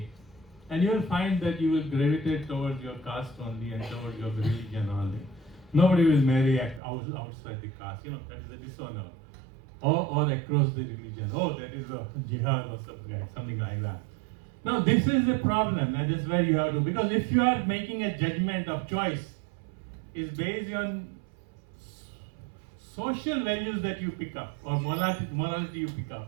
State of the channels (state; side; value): drops out; left; at 6.8 s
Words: And you will find that you will gravitate towards your caste only and towards your religion only. Nobody will marry outside the caste. That is a dishonor. Or across the religion. Oh, that is a jihad or something like that. Now this is the problem, and this is where you have to, because if you are making a judgment of choice, is based on social values that you pick up or morality you pick